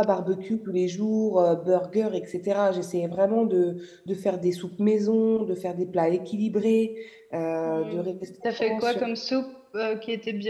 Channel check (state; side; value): identical; both; correlation 1.00